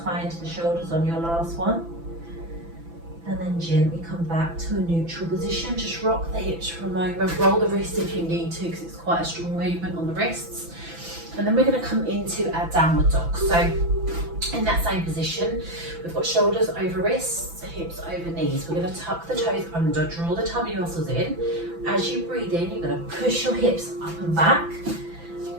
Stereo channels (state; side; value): late; left; 6.0 ms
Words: high into the shoulders on your last one. And then gently come back to a neutral position. Just rock the hips for a moment. Roll the wrists if you need to, because it's quite a strong movement on the wrists. And then we're going to come into our downward dog. So in that same position, we've got shoulders over wrists, hips over knees. We're going to tuck the toes under, draw the tummy muscles in. As you breathe in, you're going to push your hips up and back,